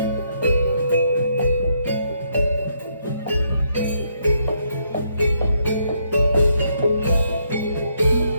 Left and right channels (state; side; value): inverted; both; correlation -0.75